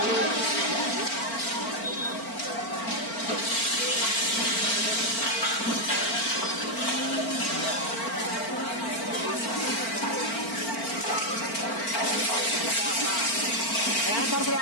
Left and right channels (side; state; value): right; late; 4.4 ms